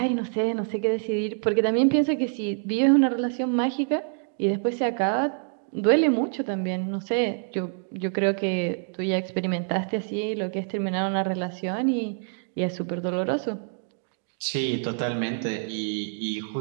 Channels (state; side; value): silent; left; digital silence